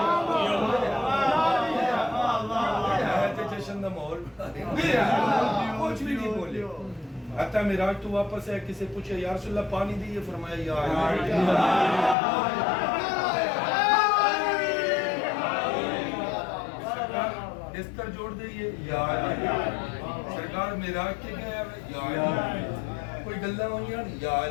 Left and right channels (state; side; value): drops out; right; at 12.2 s